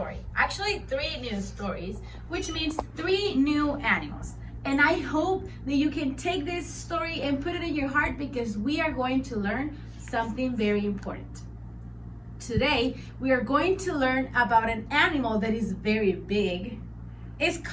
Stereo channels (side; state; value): both; identical; correlation 1.00